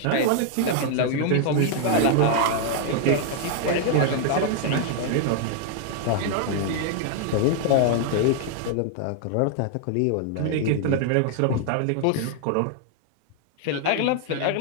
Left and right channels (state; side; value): different; both; correlation 0.00